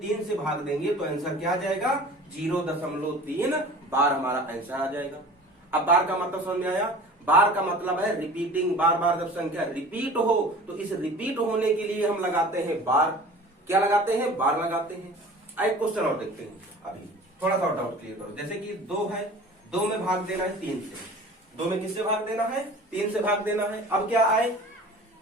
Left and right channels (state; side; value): normal; both; correlation 0.42